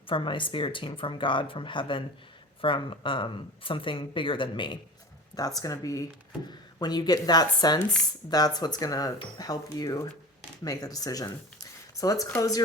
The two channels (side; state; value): both; normal; correlation 0.34